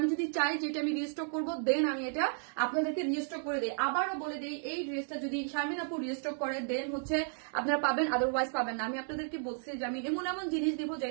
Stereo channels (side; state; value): left; silent; digital silence